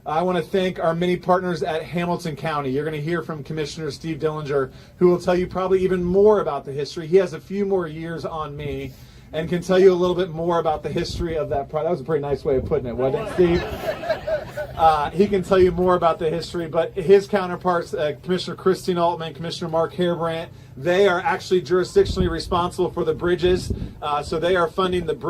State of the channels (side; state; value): both; identical; correlation 1.00